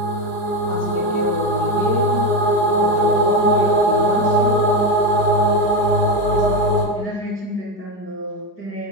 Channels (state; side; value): late; right; 4.9 ms